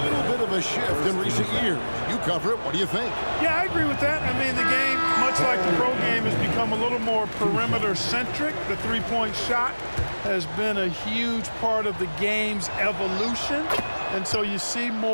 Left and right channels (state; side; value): inverted; both; correlation -1.00